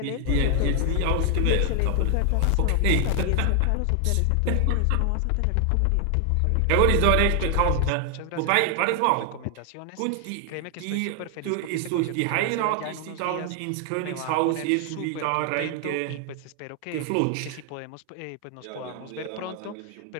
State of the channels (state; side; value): different; both; correlation 0.00